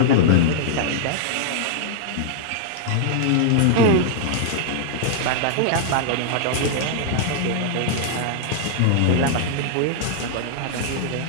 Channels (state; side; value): different; both; correlation -0.01